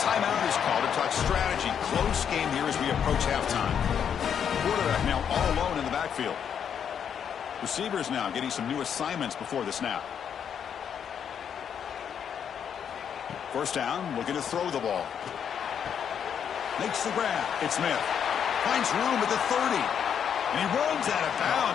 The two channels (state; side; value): quieter; right; 8.1 dB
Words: is called to talk strategy. Close game here as we approach halftime. Quarterback now all alone in the backfield. Receivers now getting some new assignments before the snap. First down, looking to throw the ball. Makes the grab. It's Smith. Finds room at the 30. And he runs out of